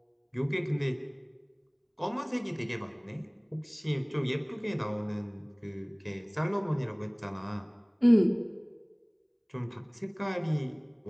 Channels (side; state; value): both; identical; correlation 1.00